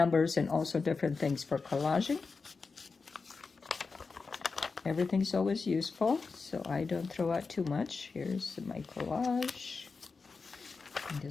and also different things for collaging. Everything's always useful, so I don't throw out too much. Here's my collage. And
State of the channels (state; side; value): quieter; right; 4.6 dB